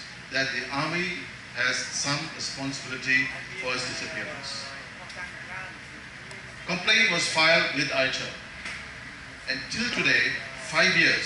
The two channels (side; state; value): both; identical; correlation 1.00